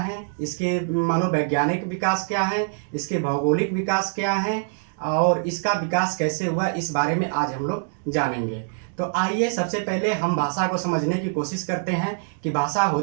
इसके मनोवैज्ञानिक विकास क्या है, इसके भौगोलिक विकास क्या है और इसका विकास कैसे हुआ, इस बारे में आज हम लोग जानेंगे। तो आइए सबसे पहले हम भाषा को समझने की कोशिश करते हैं कि भाषा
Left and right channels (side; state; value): left; silent; digital silence